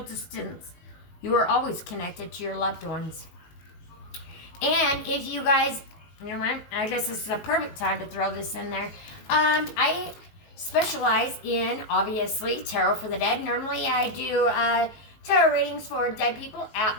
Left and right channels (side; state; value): right; late; 19 ms